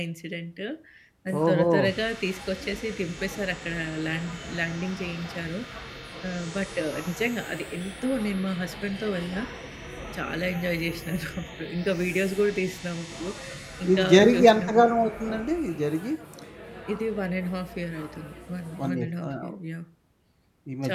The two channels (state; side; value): identical; both; correlation 1.00